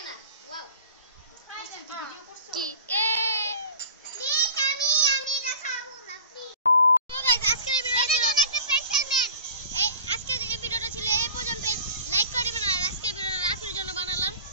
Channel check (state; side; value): inverted; both; correlation -0.41